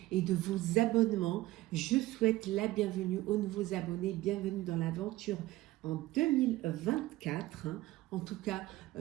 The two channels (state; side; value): quieter; left; 17.3 dB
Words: et de vos abonnements. Je souhaite la bienvenue aux nouveaux abonnés, bienvenue dans l'aventure en 2024. En tout cas,